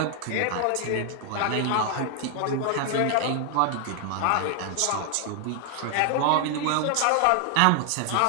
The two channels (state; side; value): different; both; correlation 0.00